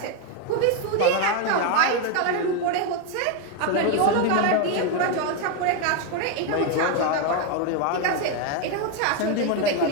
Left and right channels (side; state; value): both; different; correlation 0.02